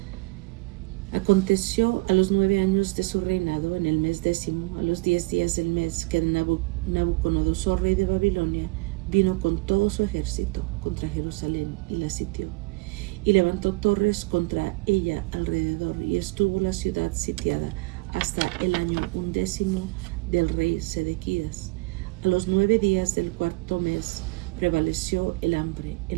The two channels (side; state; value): left; quieter; 23.6 dB